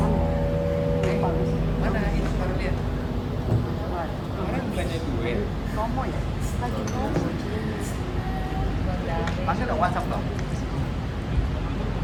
mana itu baru lihat. Orang bukannya duit. Promo ya? Lagi promo. Masih dong WhatsApp dong.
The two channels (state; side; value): identical; both; correlation 1.00